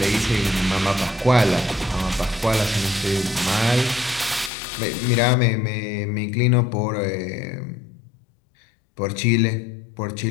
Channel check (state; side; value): drops out; right; at 4.5 s